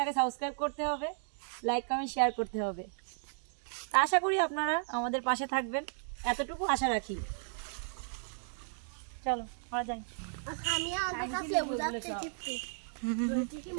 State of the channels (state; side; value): silent; left; digital silence